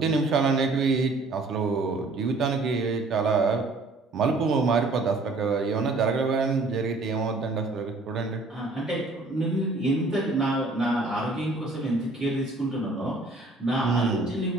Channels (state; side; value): quieter; left; 3.3 dB